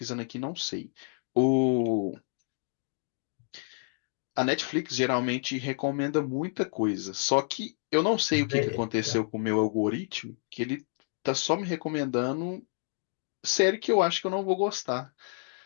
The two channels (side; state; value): right; silent; 58 dB below the other